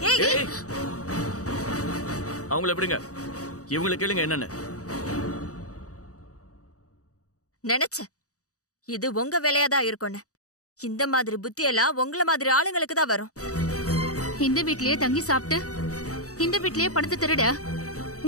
அவங்கள எப்படிங்க, இவங்களை கேளுங்க என்னன்னு. நினைச்சேன் இது உங்க வேலையாதான் இருக்கும்னு. இந்த மாதிரி புத்தி எல்லாம் உங்கள மாதிரி ஆளுங்களுக்கு தான் வரும். இந்த வீட்லயே தங்கி சாப்பிட்டு இந்த வீட்லயே பணத்தை திருட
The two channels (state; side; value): late; right; 0.66 ms